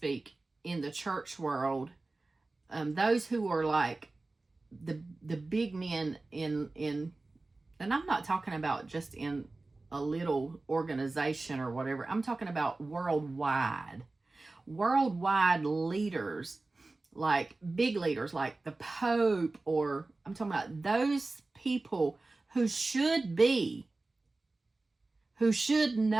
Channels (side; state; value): left; quieter; 3.3 dB